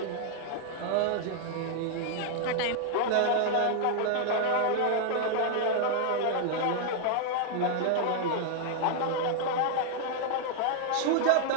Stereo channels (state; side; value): different; both; correlation 0.00